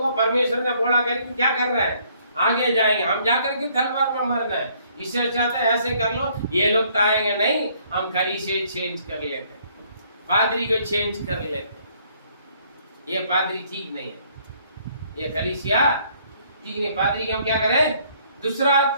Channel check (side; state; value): both; inverted; correlation -0.64